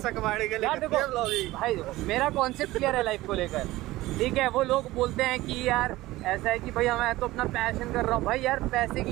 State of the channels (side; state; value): left; quieter; 17.9 dB